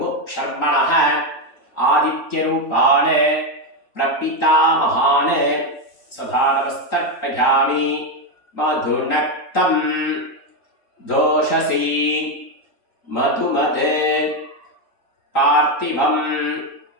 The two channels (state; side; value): late; right; 3.8 ms